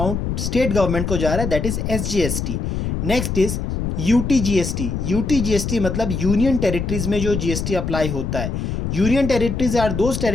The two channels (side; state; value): left; noise; rumble, 2 dB below the sound